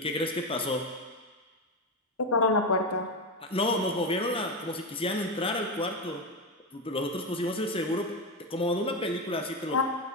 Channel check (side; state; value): both; normal; correlation 0.14